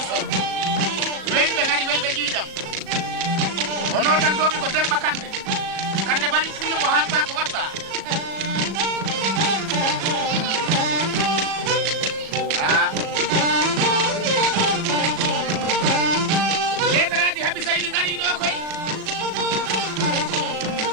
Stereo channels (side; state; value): left; late; 37 ms